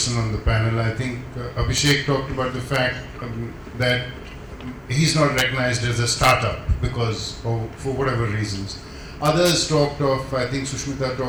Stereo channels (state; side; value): identical; both; correlation 1.00